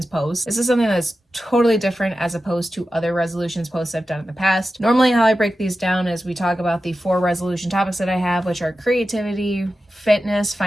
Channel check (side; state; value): both; normal; correlation 0.93